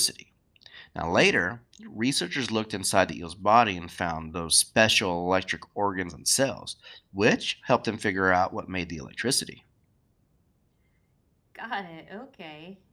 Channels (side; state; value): both; identical; correlation 1.00